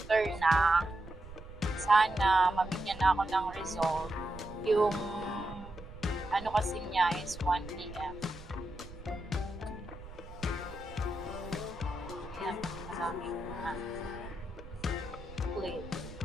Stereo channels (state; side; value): noise; right; rumble, 15 dB below the sound